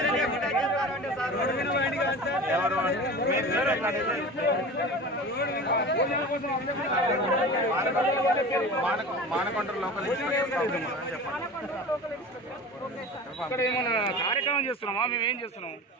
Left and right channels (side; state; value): both; normal; correlation 0.34